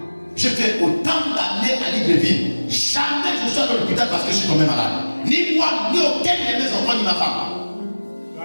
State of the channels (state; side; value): inverted; both; correlation -1.00